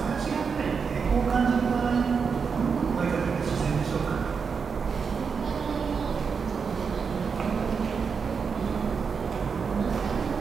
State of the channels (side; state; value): left; quieter; 5.8 dB